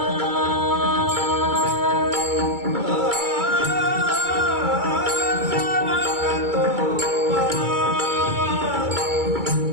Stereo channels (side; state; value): left; late; 2.3 ms